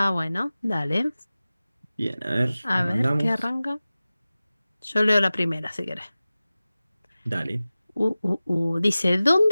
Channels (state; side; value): inverted; both; correlation -0.97